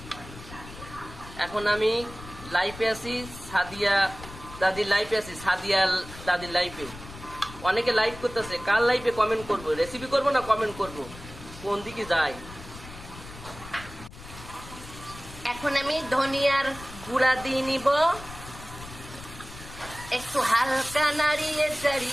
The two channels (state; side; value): noise; left; rumble, 15 dB below the sound